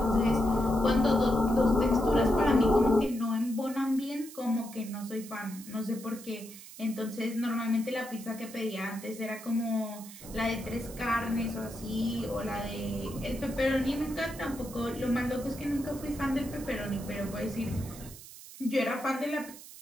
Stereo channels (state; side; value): noise; right; hiss, 16 dB below the sound